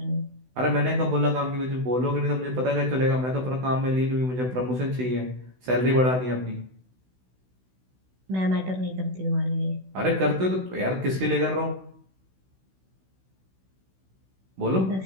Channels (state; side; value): late; left; 16 ms